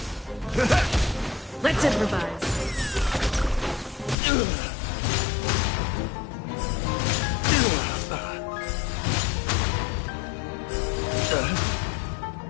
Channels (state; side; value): drops out; right; at 4.2 s